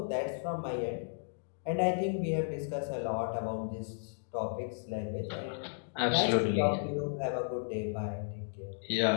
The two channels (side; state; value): right; silent; digital silence